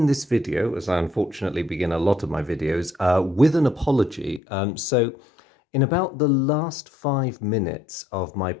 this video, as I unfortunately begin a lot of my videos, with an apology. In about the last 5 minutes of my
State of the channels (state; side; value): drops out; right; at 4.4 s